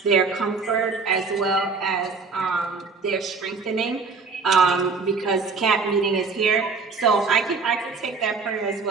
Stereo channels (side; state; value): left; quieter; 4.5 dB